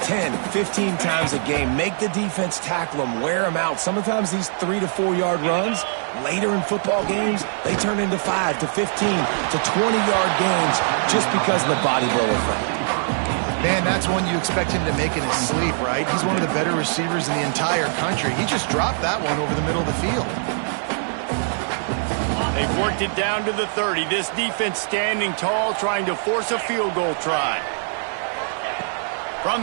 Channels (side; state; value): left; silent; 60 dB below the other